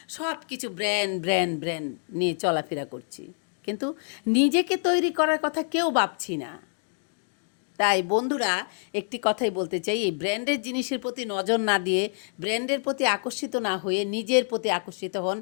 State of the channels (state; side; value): silent; right; 60 dB below the other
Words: সব কিছু ব্র্যান্ড ব্র্যান্ড ব্র্যান্ড নিয়ে চলাফেরা করছি, কিন্তু নিজেকে তৈরি করার কথা কেউ ভাবছি না। তাই বন্ধুরা, একটি কথাই বলতে চাই, এই ব্র্যান্ডের জিনিসের প্রতি নজর না দিয়ে, ব্র্যান্ডের প্রতি আকর্ষিত না হয়ে নিজের প্রতি আকর্ষিত হন,